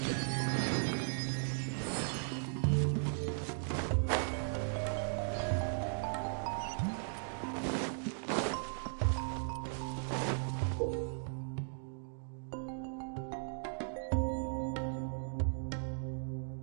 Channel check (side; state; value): left; silent; digital silence